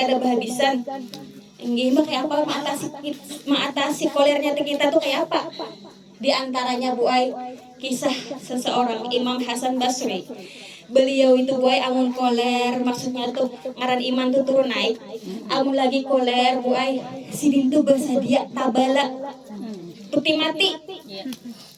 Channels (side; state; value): both; identical; correlation 1.00